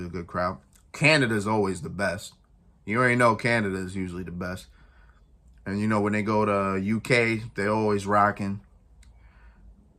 a good crowd. Canada is always the best. You already know Canada is usually the best. And you know when they go to UK, they're always rocking.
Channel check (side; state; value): both; identical; correlation 1.00